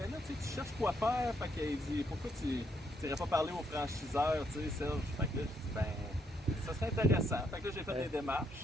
là, tu cherches quoi faire. Fait qu'il dit, pourquoi tu n'irais pas parler aux franchiseurs, tu sais, Serge? Fait que là, je dis, ben, ça serait intéressant. Fait que là, j'ai fait des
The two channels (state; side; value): normal; both; correlation 0.74